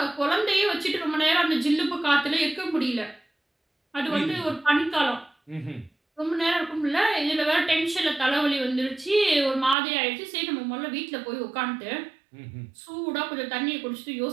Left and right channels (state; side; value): drops out; left; at 9.8 s